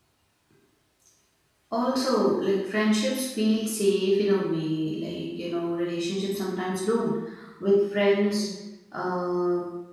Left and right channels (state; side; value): identical; both; correlation 1.00